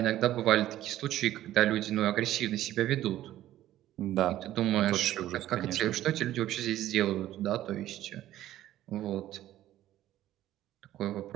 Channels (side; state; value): left; quieter; 13.6 dB